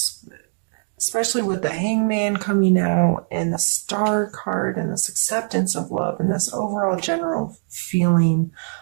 especially with the Hangman coming out and the Star card and this acceptance of love and this overall general feeling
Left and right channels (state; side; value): silent; left; digital silence